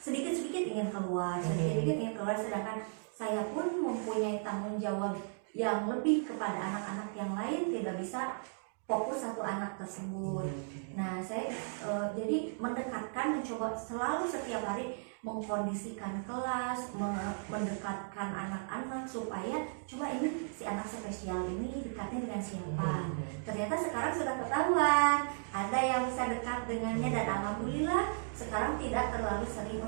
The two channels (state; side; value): silent; left; digital silence